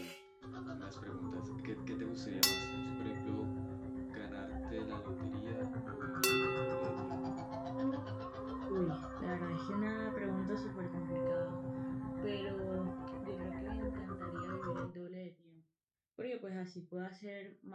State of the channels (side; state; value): both; identical; correlation 1.00